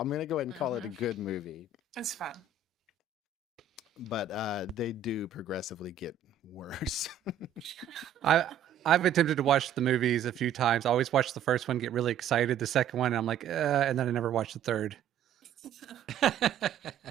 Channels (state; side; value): quieter; left; 7.2 dB